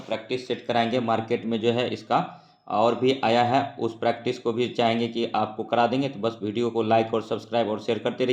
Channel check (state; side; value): identical; both; correlation 1.00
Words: सेट कराएंगे। मार्केट में जो है इसका और भी आया है, उस प्रैक्टिस को भी चाहेंगे कि आपको करा देंगे। तो बस वीडियो को लाइक और सब्सक्राइब और शेयर करते